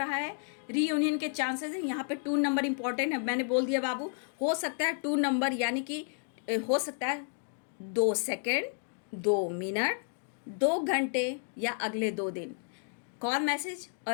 है, रीयूनियन के चांसेस हैं। यहाँ पे 2 नंबर इंपॉर्टेंट है, मैंने बोल दिया बाबू, हो सकता है 2 नंबर, यानी कि हो सकता है 2 सेकेंड, 2 मिनट, 2 घंटे या अगले 2 दिन कॉल मैसेज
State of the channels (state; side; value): silent; right; 57 dB below the other